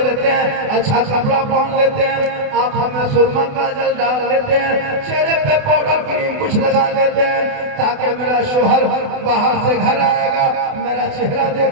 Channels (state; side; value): late; left; 28 ms